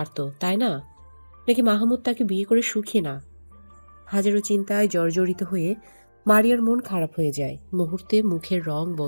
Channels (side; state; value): both; inverted; correlation -1.00